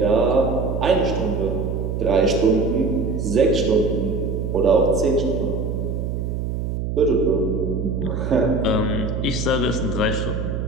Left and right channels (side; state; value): right; noise; hum, 3 dB below the sound